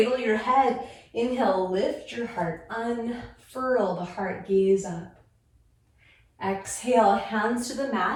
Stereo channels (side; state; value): both; identical; correlation 1.00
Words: your head. Inhale, lift your heart, unfurl the heart, gaze up. Exhale, hands to the